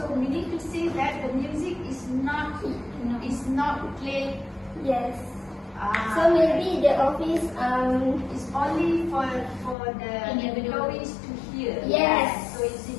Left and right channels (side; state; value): right; drops out; at 9.8 s